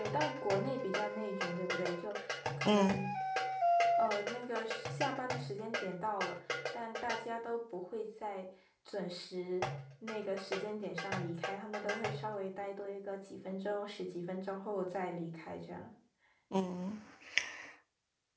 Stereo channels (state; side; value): identical; both; correlation 1.00